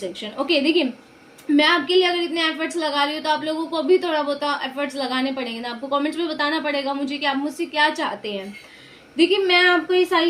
Okay, देखिए मैं आपके लिए अगर इतने एफर्ट्स लगा रही हूँ तो आप लोगों को भी थोड़ा बहुत एफर्ट्स लगाने पड़ेंगे ना। आपको कमेंट्स में बताना पड़ेगा मुझे कि आप मुझसे क्या चाहते हैं। देखिए मैं आपको ये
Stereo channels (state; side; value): identical; both; correlation 1.00